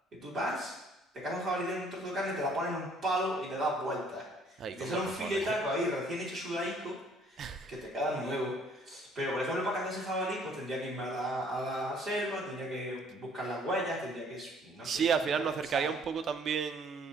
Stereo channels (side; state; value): both; normal; correlation 0.60